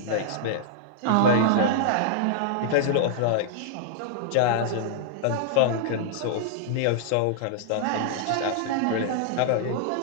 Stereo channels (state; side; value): different; both; correlation -0.01